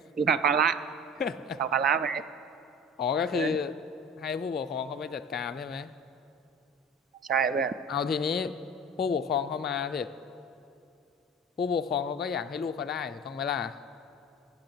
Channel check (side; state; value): both; normal; correlation 0.37